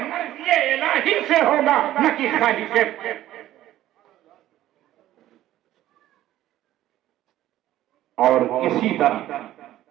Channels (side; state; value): left; quieter; 13.9 dB